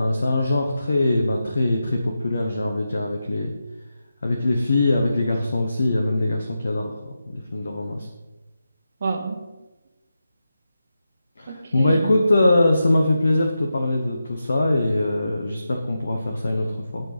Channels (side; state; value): both; inverted; correlation -0.89